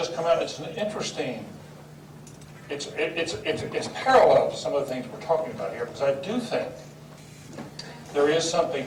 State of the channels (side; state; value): both; identical; correlation 1.00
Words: come out. It's an interesting. It's parallel to some of the things we're talking about here, because I do think there is